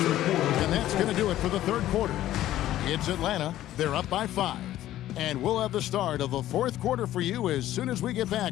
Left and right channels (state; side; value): quieter; right; 13.6 dB